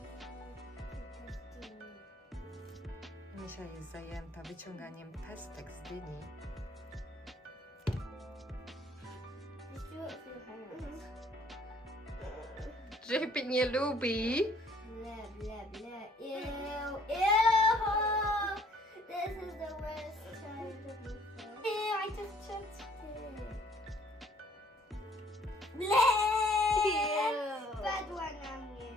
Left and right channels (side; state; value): both; normal; correlation 0.60